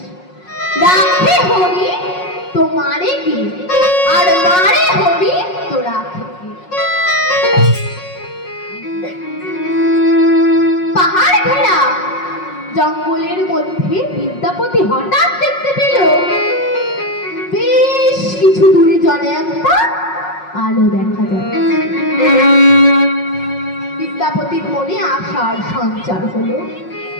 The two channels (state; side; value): late; right; 5.5 ms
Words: রাখে হরি তো মারে কে, আর মারে হরি তো রাখে কে। পাহাড় ঘেরা জঙ্গলের মধ্যে বিদ্যাপতি হঠাৎ দেখতে পেল বেশ কিছু দূরে জনে একটা আলো দেখা যাচ্ছে। বিদ্যাপতির মনে আশার সঞ্চার হলো।